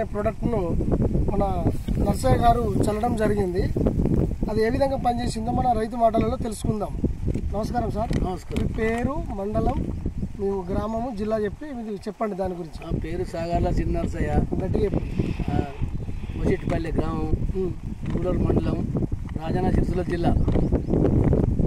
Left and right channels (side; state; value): both; identical; correlation 1.00